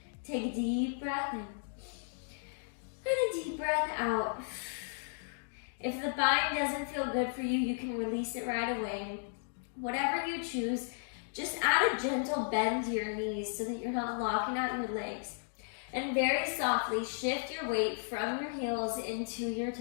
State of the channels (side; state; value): right; silent; digital silence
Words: Take a deep breath in. And a deep breath out. If the bind doesn't feel good for you, you can release it right away. Whatever you choose, just add a gentle bend to your knees so that you're not locking out your legs. And very softly shift your weight from your heels into your